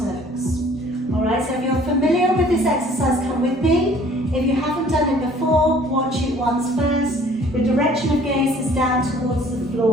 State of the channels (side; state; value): both; normal; correlation 0.54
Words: Alright, so if you're familiar with this exercise, come with me. If you haven't done it before, watch it once first. The direction of gaze is down towards the